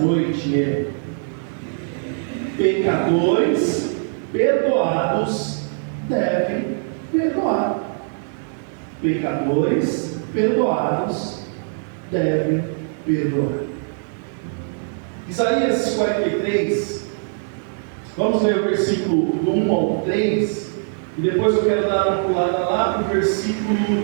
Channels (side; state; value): left; silent; digital silence